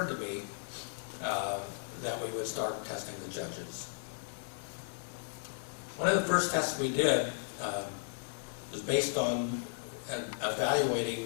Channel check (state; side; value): silent; right; 54 dB below the other